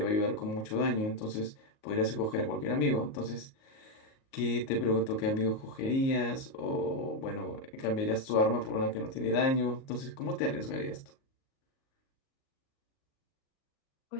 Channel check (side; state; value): right; late; 38 ms